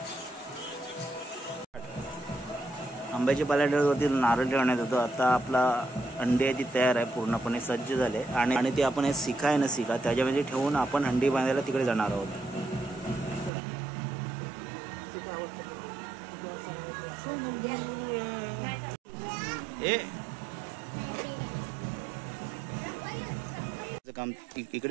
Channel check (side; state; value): left; drops out; at 13.5 s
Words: आंब्याच्या पाल्यावरती नारळ ठेवण्यात येतो. आता आपला अंड्याची तयार आहे, पूर्णपणे सज्ज झाले. आणि ते आपण शिखा आहे ना, शिखा त्याच्यामध्ये ठेवून आपण हंडी बांधायला तिकडे जाणार आहोत. काम